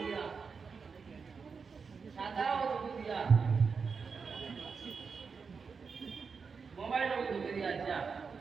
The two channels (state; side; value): quieter; left; 5.4 dB